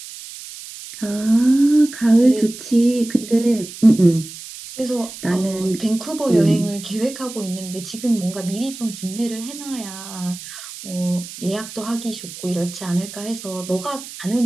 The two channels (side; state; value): right; noise; hiss, 13 dB below the sound